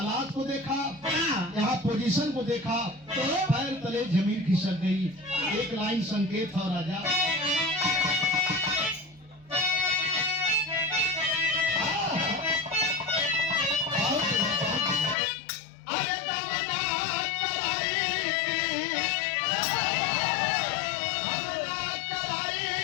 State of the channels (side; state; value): right; drops out; at 15.2 s